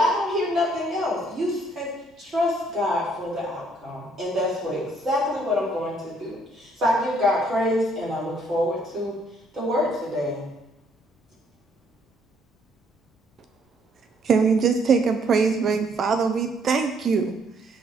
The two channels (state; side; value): normal; both; correlation 0.66